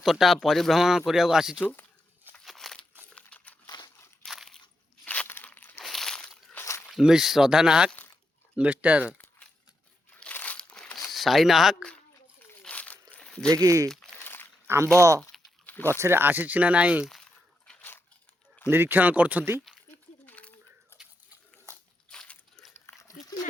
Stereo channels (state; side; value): normal; both; correlation 0.84